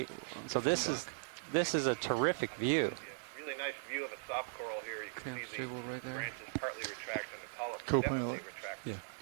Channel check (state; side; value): silent; left; digital silence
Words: So this is a terrific view. Yeah, really nice view of a soft coral here. You can Okay, see stable the right there. branches partly retract and the polyps Co-pilot. definitely retract. Yeah.